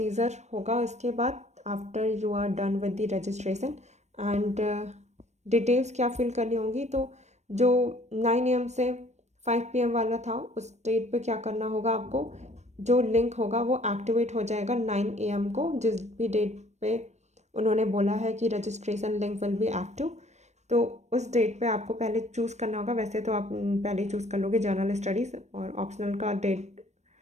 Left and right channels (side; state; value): left; late; 0.33 ms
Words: होगा उसके बाद after you are done with the registration and details क्या फिल करनी होंगी. तो जो 9 AM से 5 PM वाला था उस डेट पे क्या करना होगा आपको, जो लिंक होगा वो एक्टिवेट हो जाएगा 9 AM को, जिस भी डेट पे उन्होंने बोला है कि registration link will be active. तो उस डेट पे आपको पहले चूज़ करना होगा. वैसे तो आप पहले ही चूज़ कर लोगे जनरल स्टडीज़, और ऑप्शनल का डेट